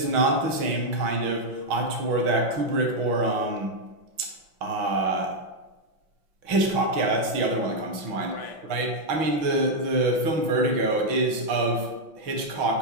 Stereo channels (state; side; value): late; left; 5.9 ms